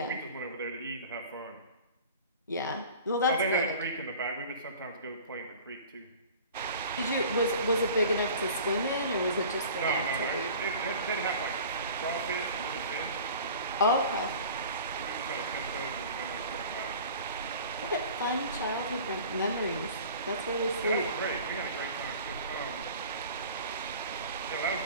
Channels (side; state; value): both; inverted; correlation -0.42